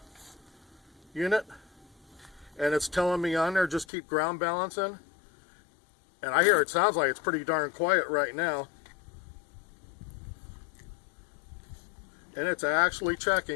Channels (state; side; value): drops out; right; at 3.9 s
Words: unit, and it's telling me on there just keep ground balancing. And I hear it sounds like it's pretty darn quiet right now. And it's actually